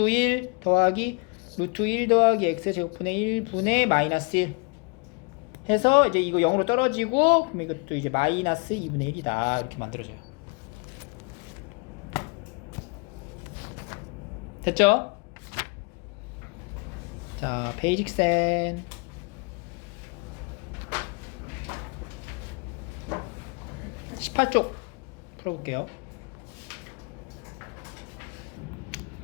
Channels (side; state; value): right; quieter; 32.2 dB